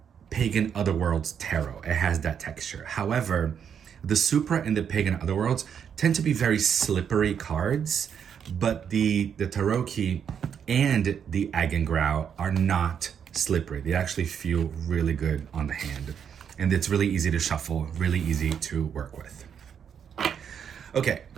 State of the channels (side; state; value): left; quieter; 7.9 dB